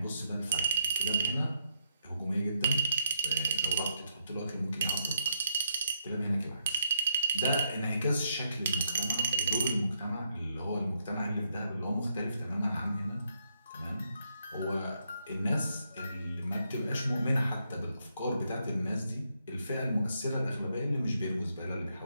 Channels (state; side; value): inverted; both; correlation -0.77